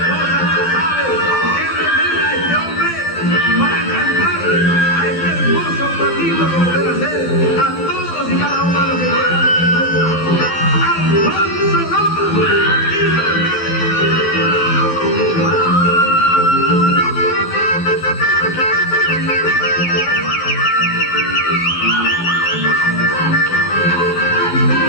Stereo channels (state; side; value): late; right; 12 ms